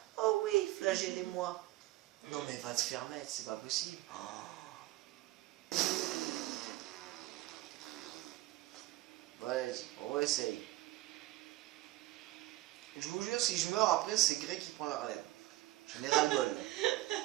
Oh oui, flagellez-moi. Non, mais va te faire mettre, c'est pas possible. Oh. Ouais, on réessaye. Je vous jure, si je meurs après, c'est Grey qui prend la relève. J'en ai ras-le-bol.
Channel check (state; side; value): quieter; left; 17.3 dB